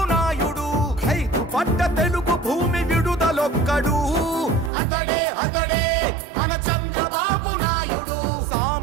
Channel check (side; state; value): left; drops out; at 4.7 s